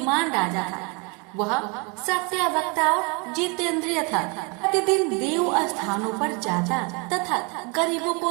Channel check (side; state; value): left; quieter; 31.4 dB